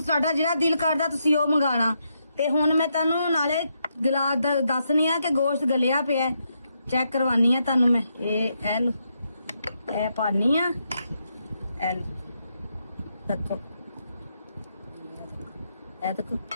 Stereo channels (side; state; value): both; inverted; correlation -0.80